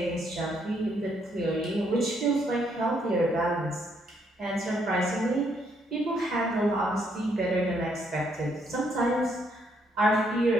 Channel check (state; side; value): normal; both; correlation 0.72